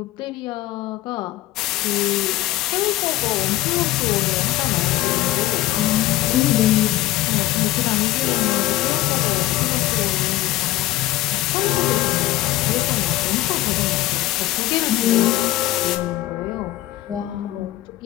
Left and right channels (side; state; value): right; quieter; 15.8 dB